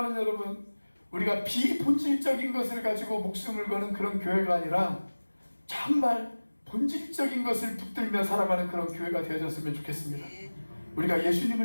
여러분, 우리가 비본질적인 것을 가지고 목숨을 거는 그런 교회가 아니라 정말 본질적인 것을 붙들며 살아가는 그런 교회가 되어졌으면 좋겠습니다. 우리가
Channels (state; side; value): inverted; both; correlation -1.00